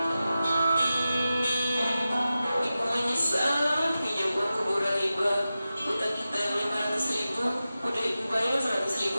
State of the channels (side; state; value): both; inverted; correlation -0.94